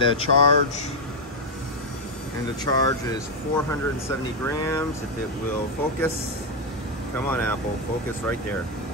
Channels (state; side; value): normal; both; correlation 0.02